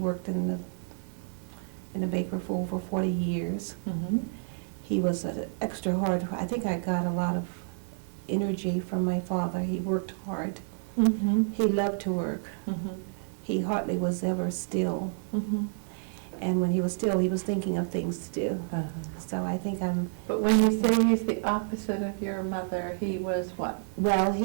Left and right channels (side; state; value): left; silent; digital silence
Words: in a baker for over 40 years. He was extra hard. I think I got a lot of energy from my father. He worked hard. He loved to work. He hardly was ever still. And when he was still, he was thinking of things to do. So I think I'm... But when you say he's the opposite of your mother, he was what? Well,